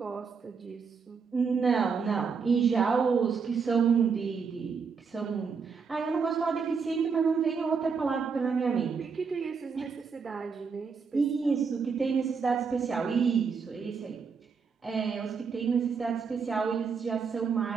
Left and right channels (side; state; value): left; quieter; 5.6 dB